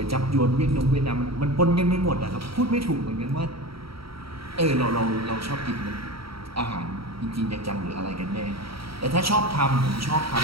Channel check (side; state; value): left; late; 0.75 ms